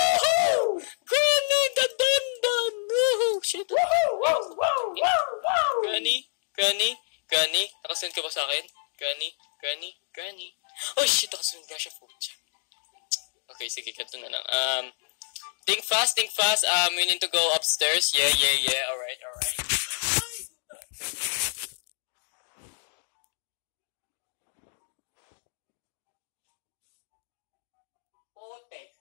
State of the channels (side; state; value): right; silent; digital silence